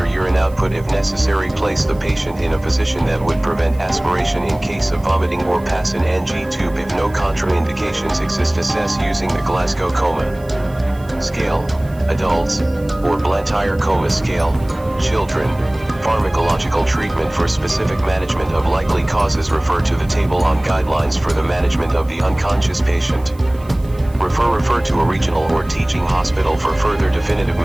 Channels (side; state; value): right; noise; hiss, 26 dB below the sound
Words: urine output if necessary. Place the patient in a position that would prevent aspiration in case of vomiting, or pass an NG tube if no contraindications exist. Assess using the Glasgow Coma Scale, adults, or Blantyre Coma Scale, children. Pharmacological treatment. For specific management of likely causes, refer to the table on guidelines for the management of the unconscious patient. Refer to a regional or teaching hospital for further definitive